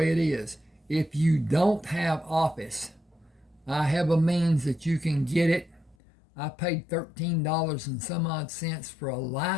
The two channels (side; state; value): right; drops out; at 6.0 s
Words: it is. If you don't have Office, I have a means that you can get it. I paid $13 and some odd cents for a